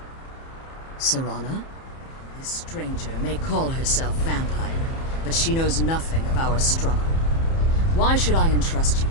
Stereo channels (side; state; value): right; late; 30 ms